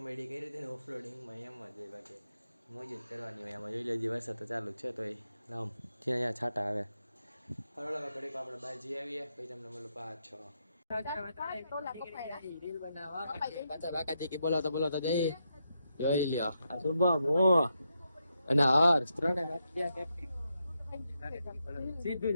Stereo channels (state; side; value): inverted; both; correlation -0.83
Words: કરી હતી ને ઓફરોડિંગમાં એમ જ હોય. બાકી મોજ જ કરવાની હોય એમાં. જોઈ લેજે વરસાદ તો ચાલુ છે તો રામ છે અહીંયા છાંટા આવે. હરોળ ઘડીક આપણે બહાર જઈ આવીએ પછી તમને મળું પાછો. બોલાવતા જઈ જોઈ લ્યો. શુભમ અને હર્ષ ત્રણે સીધું